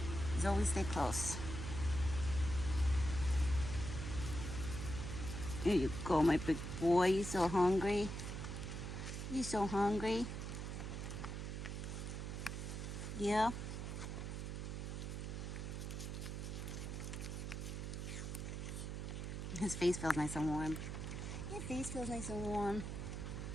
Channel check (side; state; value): right; noise; hum, 4 dB below the sound